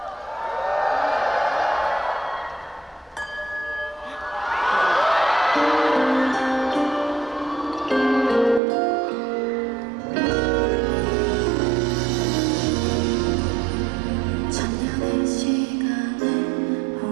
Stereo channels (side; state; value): left; drops out; at 8.6 s